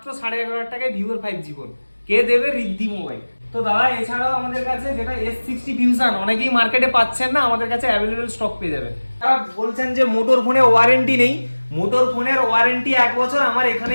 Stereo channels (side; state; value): both; inverted; correlation -1.00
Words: 11,500 টাকায় ভিভোর 5G ফোন। কে দেবে? রিদ্ধি মোবাইল। তো দাদা এছাড়াও আমাদের কাছে যেটা S60 ফিউশন অনেকেই মার্কেটে পাচ্ছেন না, আমাদের কাছে অ্যাভেলেবেল স্টক পেয়ে যাবেন। তারা বলছেন যে মোটর ফোনে ওয়ারেন্টি নেই, মোটর ফোনের ওয়ারেন্টি 1 বছর আমার